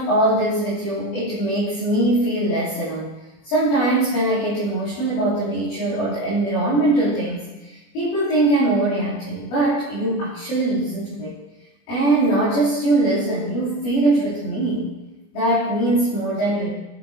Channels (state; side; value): late; right; 24 ms